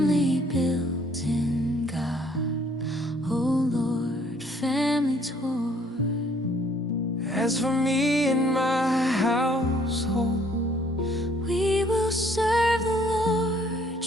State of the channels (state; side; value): normal; both; correlation 0.62